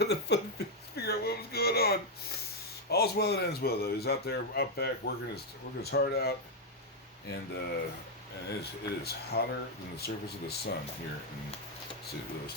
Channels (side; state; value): both; normal; correlation 0.00